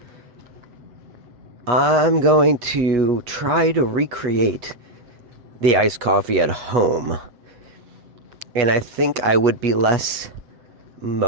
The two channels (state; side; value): late; left; 8.3 ms